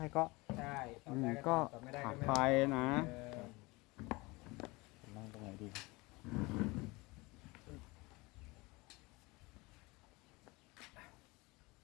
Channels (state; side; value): quieter; right; 23.9 dB